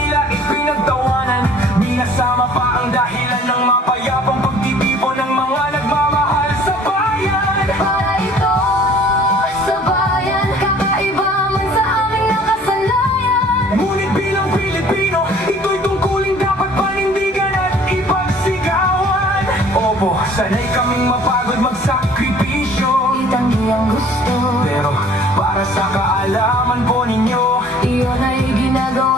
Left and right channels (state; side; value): normal; both; correlation 0.52